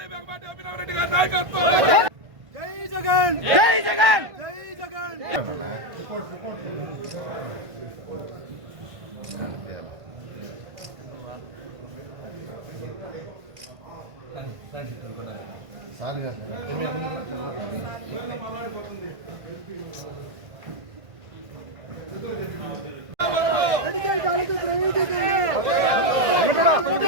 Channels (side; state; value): left; late; 1.5 ms